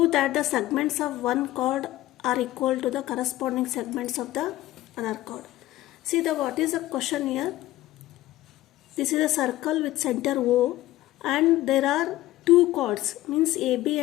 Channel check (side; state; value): right; quieter; 15.9 dB